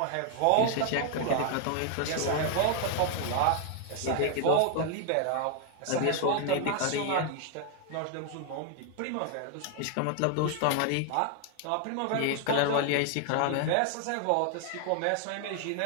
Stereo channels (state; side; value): different; both; correlation 0.00